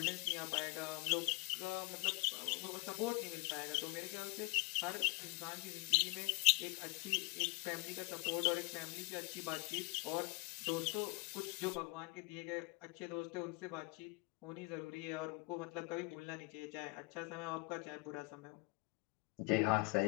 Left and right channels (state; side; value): quieter; right; 26.6 dB